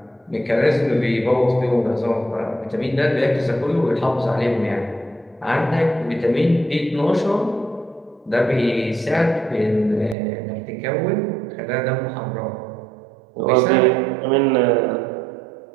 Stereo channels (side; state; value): left; drops out; at 10.2 s